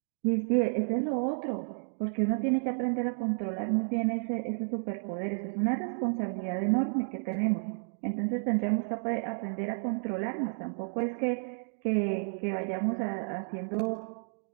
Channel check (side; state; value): left; silent; digital silence